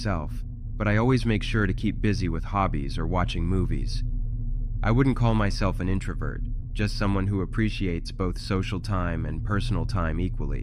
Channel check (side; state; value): both; identical; correlation 1.00